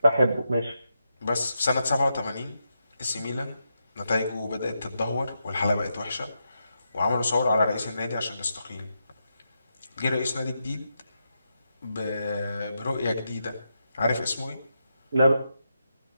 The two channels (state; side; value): inverted; both; correlation -0.85